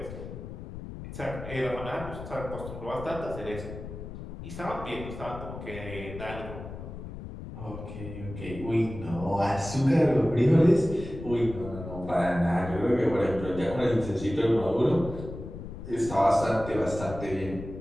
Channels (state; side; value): noise; left; rumble, 10 dB below the sound